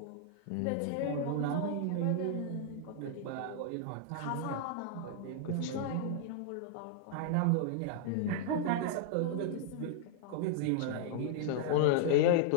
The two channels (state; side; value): different; both; correlation -0.01